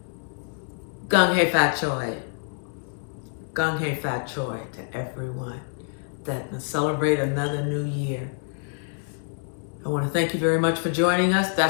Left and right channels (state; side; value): silent; right; 59 dB below the other